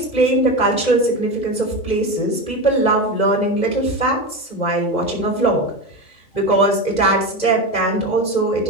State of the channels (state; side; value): late; right; 2.0 ms